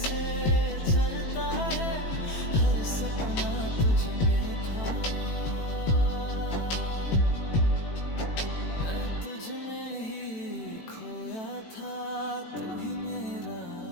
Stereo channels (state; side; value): late; right; 18 ms